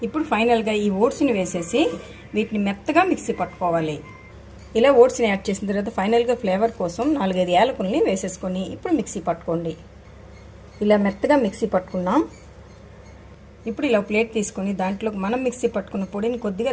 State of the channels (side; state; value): both; identical; correlation 1.00